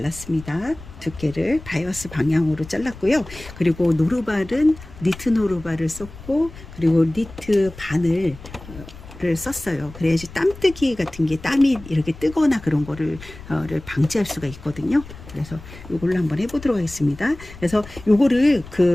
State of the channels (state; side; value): noise; left; rumble, 17 dB below the sound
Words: 두께를 바이어스 방향으로 잘랐고요. 그리고 노루발은 니트 노루발을 썼고, 그리고 니트 바늘 를 썼어요. 그래야지 땀뜨기 같은 게 땀이 이렇게 뜨거나 그런 거를 방지할 수가 있거든요. 그래서 요걸로 한번 해보도록 하겠습니다. 그래서 요거를